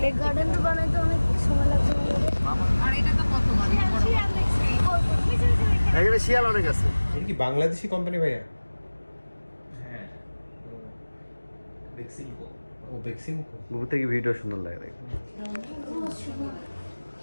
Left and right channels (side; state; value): both; inverted; correlation -1.00